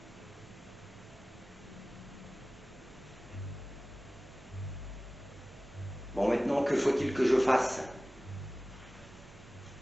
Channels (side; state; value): both; normal; correlation 0.97